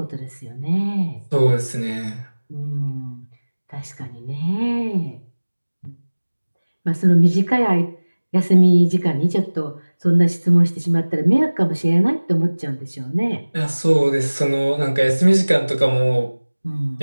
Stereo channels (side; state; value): both; inverted; correlation -1.00